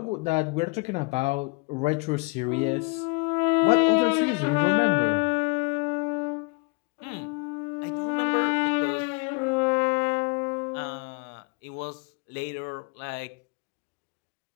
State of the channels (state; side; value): quieter; right; 29.6 dB